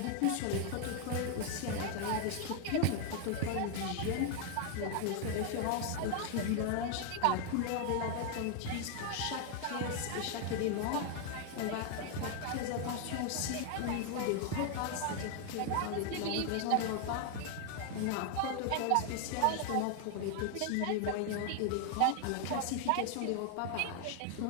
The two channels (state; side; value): different; both; correlation 0.00